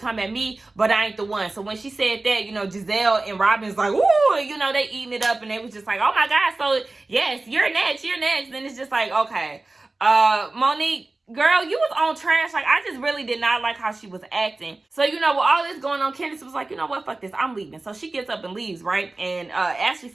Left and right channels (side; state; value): left; quieter; 3.2 dB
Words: at me, but I ain't the one. So when she said that, you know, Giselle and Robin's like, ooh, you know, they eating it up, and they was just like, oh my God, so yes, you're next. Then it's just like, okay, Monique, girl, you was on trash. Like, I just really did not like how she was acting. So, you know, with all this going on, Candace was like, you know what, fuck this, I'm leaving. So she gets up and leaves, right? And Ashley